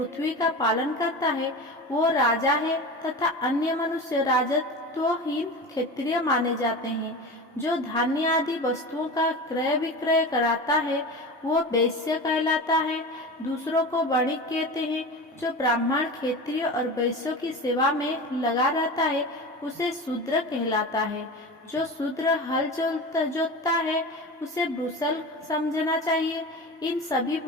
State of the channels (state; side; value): normal; both; correlation 0.29